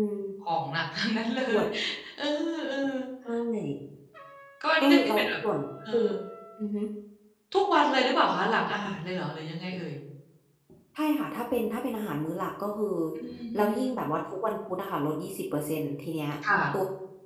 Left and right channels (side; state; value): both; identical; correlation 1.00